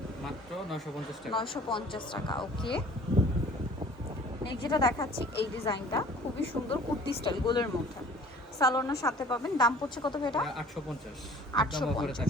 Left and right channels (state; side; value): normal; both; correlation 0.49